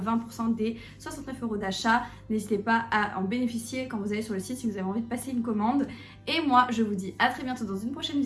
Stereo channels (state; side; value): identical; both; correlation 1.00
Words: des 69 € d'achat. N'hésitez pas à en bénéficier quand vous allez sur le site si vous avez envie de passer une commande. Et moi, je vous dis à très bientôt dans une prochaine